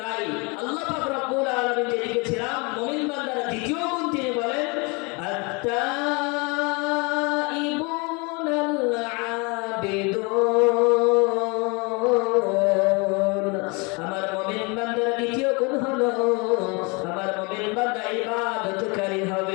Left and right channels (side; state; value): right; quieter; 29.7 dB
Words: আল্লাহ পাক রব্বুল আলামিন যে লিখেছিলাম মুমিন বান্দারা দ্বিতীয় গুণ তিনি বলেন, আত-তাইবুনাল আবিদুন। আমার মুমিন বান্দার দ্বিতীয় গুণ হলো আমার মুমিন বান্দা ইবাদতকারী